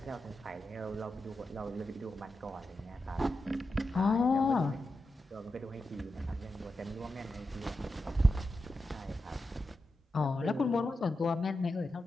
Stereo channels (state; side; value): normal; both; correlation 0.89